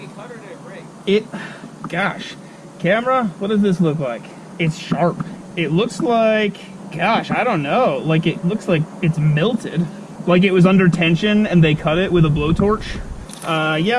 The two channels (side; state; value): both; identical; correlation 1.00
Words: cut or did it break? Gosh, camera, what does this look like? It's sharp. It looks like, gosh, I don't know. Like, it looks like it's melted. Like it was under tension and they cut it with a blowtorch.